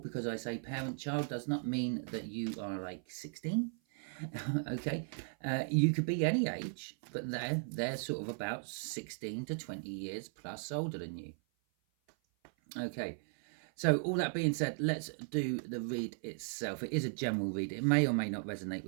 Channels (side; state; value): left; silent; 53 dB below the other